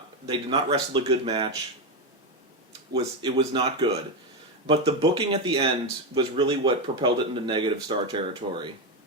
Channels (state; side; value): normal; both; correlation 0.10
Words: wrestle a good match. It was not good. But the booking at the end was really what propelled it into negative star territory.